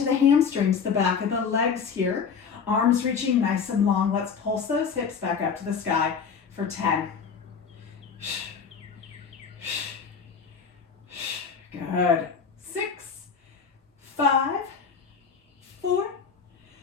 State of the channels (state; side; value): quieter; right; 6.1 dB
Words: the hamstrings, the back of the legs here. Arms reaching nice and long. Let's pulse those hips back up to the sky for 10. Good. 6, 5, 4,